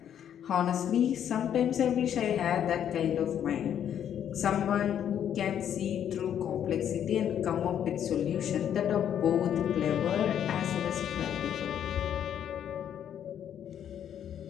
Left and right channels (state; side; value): quieter; right; 9.6 dB